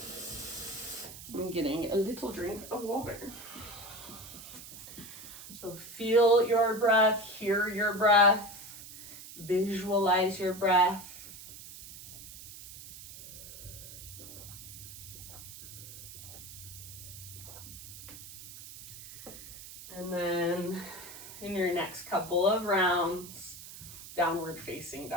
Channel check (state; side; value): noise; right; hiss, 14 dB below the sound